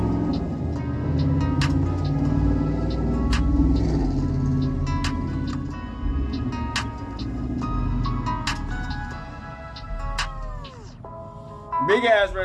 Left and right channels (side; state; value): both; identical; correlation 1.00